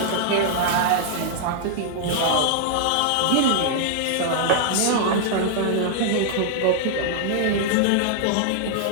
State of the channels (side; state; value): both; different; correlation -0.01